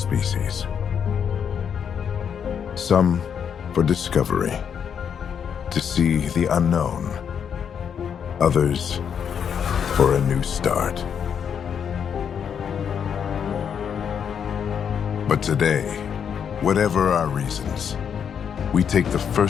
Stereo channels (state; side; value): quieter; right; 7.7 dB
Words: Some for discovery, to see the unknown. Others for a new start. But today, whatever our reasons, we take the